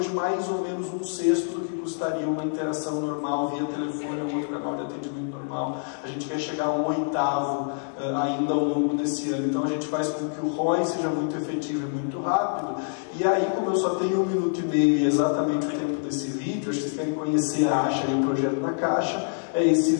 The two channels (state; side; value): silent; right; digital silence